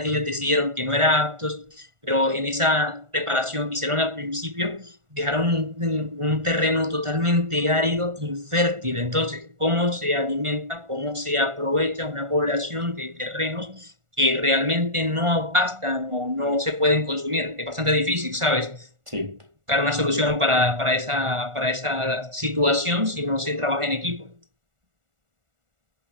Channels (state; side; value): late; left; 1.4 ms